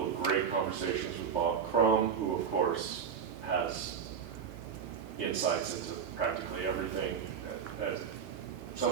of great conversations with Bob Crum, who of course has insights into practically everything as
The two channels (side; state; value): left; quieter; 7.1 dB